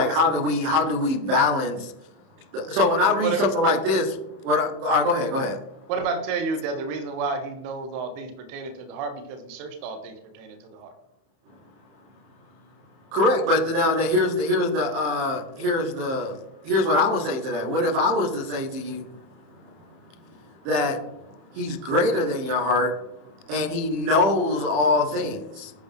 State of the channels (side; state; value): left; late; 31 ms